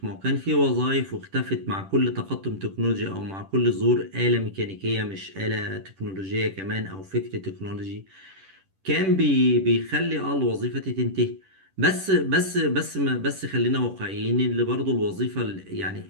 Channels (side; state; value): left; late; 10 ms